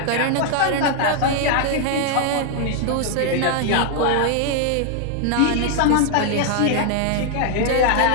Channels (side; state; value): both; different; correlation 0.00